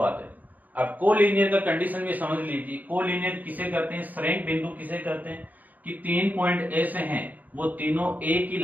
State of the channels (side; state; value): left; late; 0.082 ms